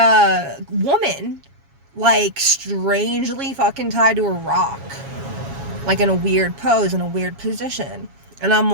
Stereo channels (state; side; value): late; left; 7.3 ms